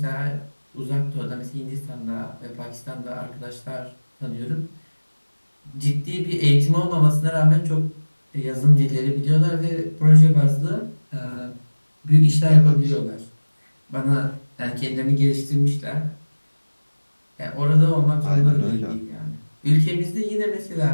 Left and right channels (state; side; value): inverted; both; correlation -1.00